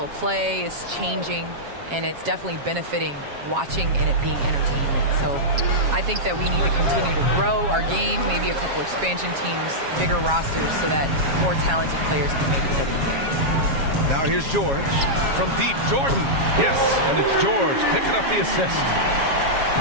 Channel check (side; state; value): left; late; 7.4 ms